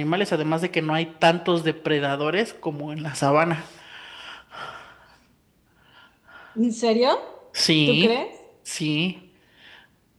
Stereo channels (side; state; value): both; identical; correlation 1.00